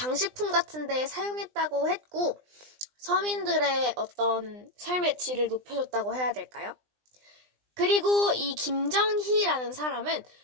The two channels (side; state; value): left; late; 20 ms